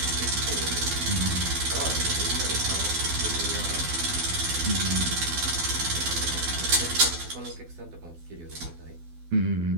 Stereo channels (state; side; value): late; left; 12 ms